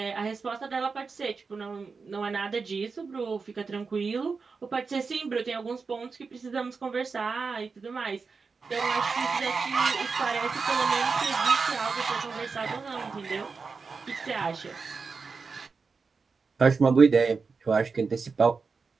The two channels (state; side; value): quieter; left; 4.8 dB